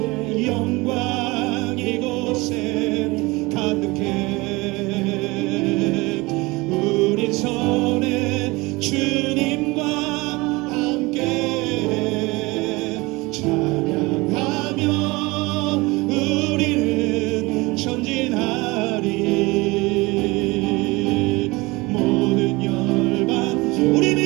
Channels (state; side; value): quieter; left; 23.2 dB